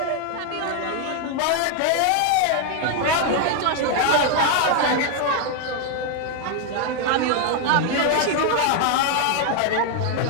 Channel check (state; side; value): different; both; correlation 0.00